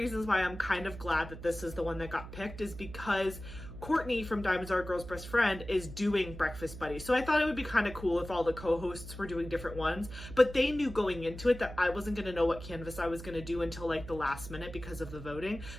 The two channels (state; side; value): noise; right; hum, 12 dB below the sound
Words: why I'm kind of glad that this is the one that got picked is because Courtney from Diamonds Are a Girl's Best Friend is doing Breakfast Buddies. So I thought it would be kind of cool if all the co-hosts were doing different ones, but they knew going into it that I wasn't going to know what canvas I was going to do until like the last minute because of the voting.